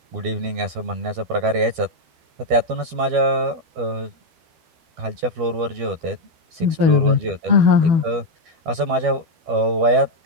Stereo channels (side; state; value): left; late; 12 ms